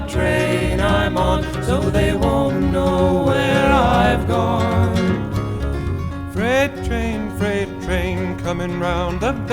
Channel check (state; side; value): identical; both; correlation 1.00